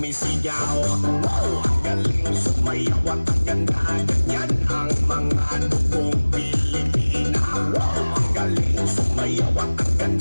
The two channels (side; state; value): both; inverted; correlation -1.00